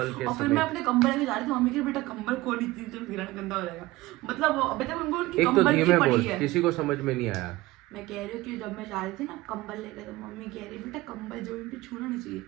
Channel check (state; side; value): quieter; left; 19.0 dB